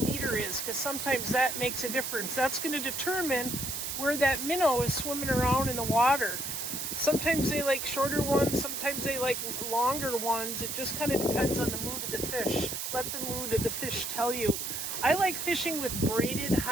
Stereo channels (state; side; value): noise; right; hiss, 4 dB below the sound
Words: is, because sometimes that makes a difference. That's going to determine where that minnow is swimming around in the water. Sometimes they like shorter ones, sometimes they like longer ones. It just kind of depends on the mood of the fish. Let the mood of the fish tell you. I like fishing with braided,